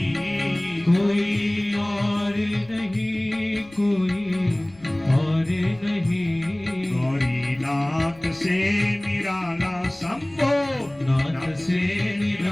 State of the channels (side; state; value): left; noise; rumble, 26 dB below the sound